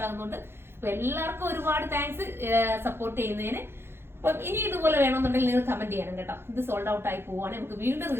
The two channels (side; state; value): left; late; 0.11 ms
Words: ആകുന്നുണ്ട്. അപ്പൊ എല്ലാവർക്കും ഒരുപാട് താങ്ക്സ് സപ്പോർട്ട് ചെയ്യുന്നതിന്. അപ്പം ഇനി ഇതുപോലെ വേണമെന്നുണ്ടെങ്കിൽ നിങ്ങൾ കമന്റ് ചെയ്യണം കേട്ടോ. ഇത് സോൾഡ് ഔട്ട് ആയി പോവാണ്, നമുക്ക് വീണ്ടും